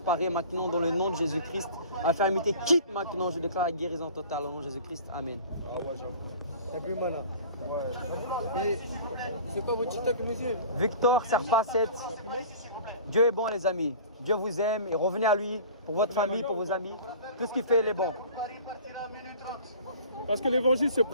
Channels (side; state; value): both; inverted; correlation -0.43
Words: maintenant dans le nom de Jésus-Christ. Infirmité quitte maintenant. Je déclare la guérison totale au nom de Jésus-Christ. Amen. T'as plus mal là. Ouais. Et c'est quoi votre TikTok, monsieur? Victor Serpa 7. Dieu est bon les amis. Dieu vous aime et revenez à lui pour votre famille, pour vos amis. Tout ce qu'il fait, il est bon. Parce que l'évangile ne se